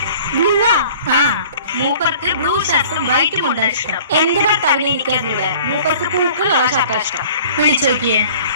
ആ മൂപ്പർക്ക് ബ്ലൂ ഷർട്ടും വൈറ്റും കൊണ്ടാണ് ഇഷ്ടം. എന്റെ ഭർത്താവിനെ ഇരിക്കാതിവിടെ മൂപ്പർക്ക് പൂക്കളുള്ള ഷർട്ടാണ് ഇഷ്ടം. വിളിച്ചു നോക്കിയേ.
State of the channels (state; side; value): inverted; both; correlation -0.48